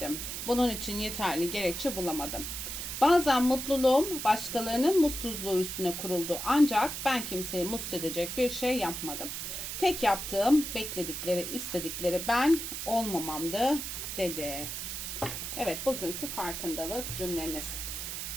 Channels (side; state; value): right; noise; hiss, 5 dB below the sound